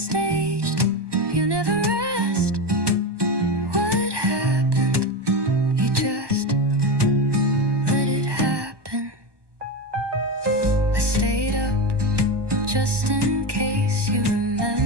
You never asked what happened. You just let it happen. I stayed up just in case you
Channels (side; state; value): left; late; 1.2 ms